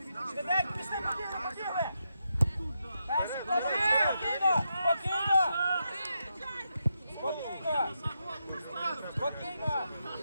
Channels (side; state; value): both; inverted; correlation -0.84